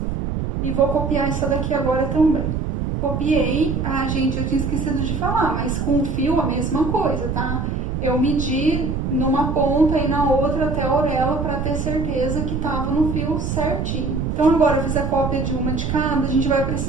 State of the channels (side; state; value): right; noise; rumble, 2 dB below the sound